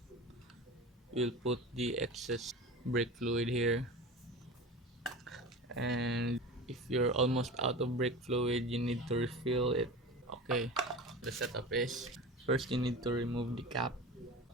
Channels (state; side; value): normal; both; correlation 0.32